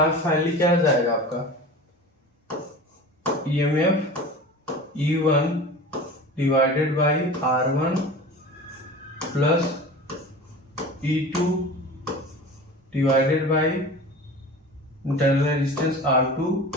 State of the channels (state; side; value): normal; both; correlation 0.36